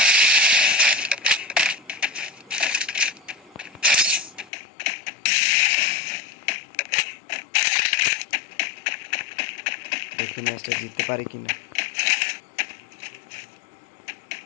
দেখি ম্যাচটা জিততে পারি কিনা।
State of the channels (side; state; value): right; drops out; at 4.5 s